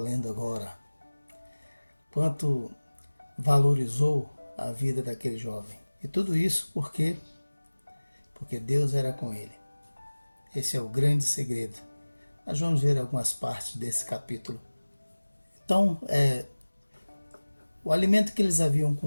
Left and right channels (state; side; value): inverted; both; correlation -1.00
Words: agora? Quanto valorizou a vida daquele jovem? E tudo isso porque Deus era com ele. Esse é o grande segredo. Nós vamos ver algumas partes desse capítulo. Então, o alimento que eles haviam